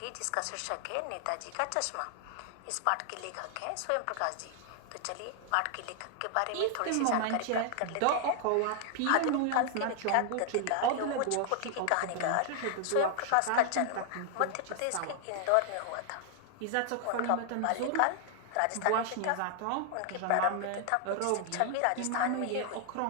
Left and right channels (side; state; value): both; different; correlation 0.00